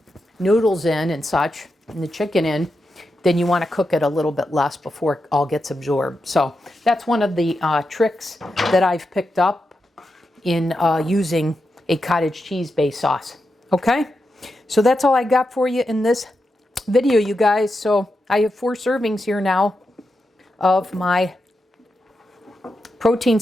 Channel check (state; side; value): normal; both; correlation 0.87